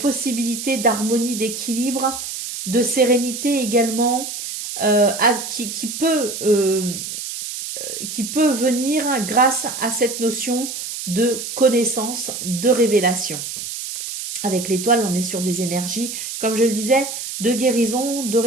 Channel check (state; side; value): noise; right; hiss, 7 dB below the sound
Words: d'harmonie, d'équilibre, de sérénité également, qui peut venir grâce à cette notion de connaissance, de révélation. Avec l'étoile, on est sur des énergies, comme je le disais, de guérison, de